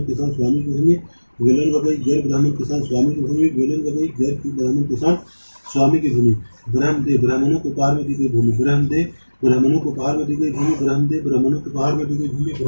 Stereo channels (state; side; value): inverted; both; correlation -1.00